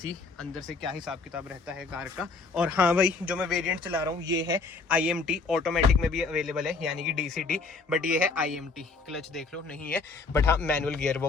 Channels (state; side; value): quieter; right; 4.1 dB